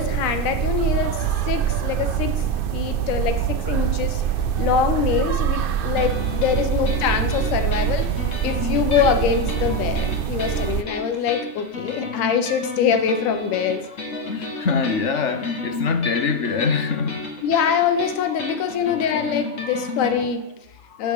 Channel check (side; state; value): right; late; 2.6 ms